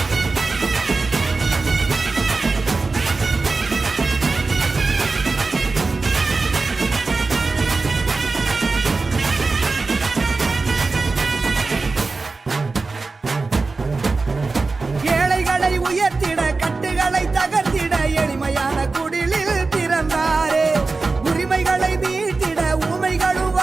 உயர்த்திட கட்டுகளை தகர்த்திட எளிமையான குடிலில் பிறந்தாரே. உரிமைகளை மீட்டிட ஊமைகளும்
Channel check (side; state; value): left; quieter; 3.9 dB